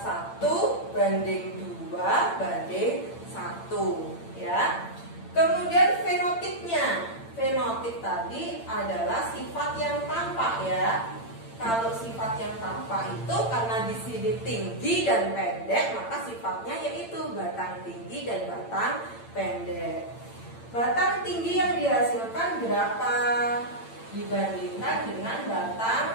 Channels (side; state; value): right; late; 8.8 ms